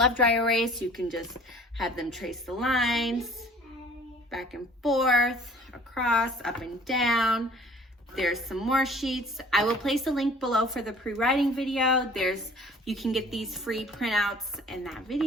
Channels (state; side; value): normal; both; correlation 0.50